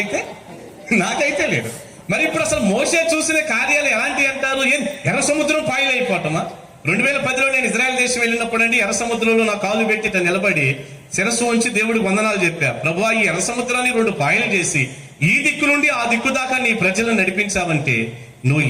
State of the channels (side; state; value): both; identical; correlation 1.00